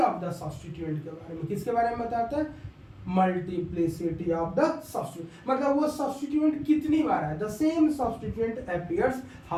द सब्स्टिट्यूएंट के बारे में। किसके बारे में बताता है? मल्टीप्लिसिटी ऑफ द सब्स्टिट्यूएंट, मतलब वो सब्स्टिट्यूएंट कितनी बार है। The same substituent appears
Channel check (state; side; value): identical; both; correlation 1.00